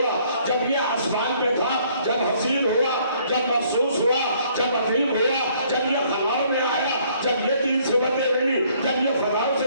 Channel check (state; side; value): inverted; both; correlation -0.63